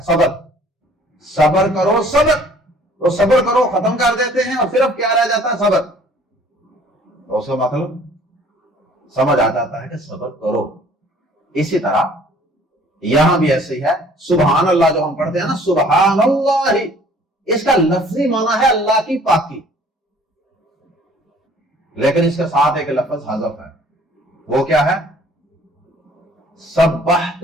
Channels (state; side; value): normal; both; correlation 0.55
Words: صبر. صبر کرو صبر، تو صبر کرو ختم کر دیتے ہیں اور صرف کیا رہ جاتا ہے؟ صبر. تو اس کا مطلب سمجھ آ جاتا ہے کہ صبر کرو. اسی طرح یہاں بھی ایسے ہی ہے. سبحان اللہ جو ہم پڑھتے ہیں نا، سبحان اللہ، اس کا لفظی معنی ہے اللہ کی پاکی، لیکن اس کے ساتھ ایک لفظ حذف ہے. وہ کیا ہے؟ سبحت